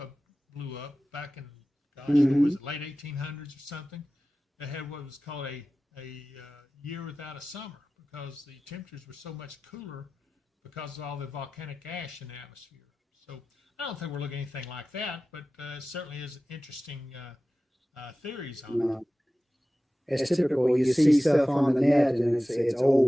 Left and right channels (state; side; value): normal; both; correlation 0.96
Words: blew up back in, gosh, what was it, late 1800s or something? They had what was called a year without a summer because the temperatures were so much cooler because of all the volcanic ash in the atmosphere. So I don't think we're looking at anything like that, but it certainly is interesting theories on it. It's typical. You see stuff on the net and it's